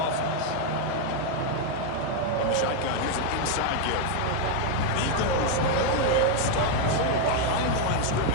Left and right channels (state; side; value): different; both; correlation 0.01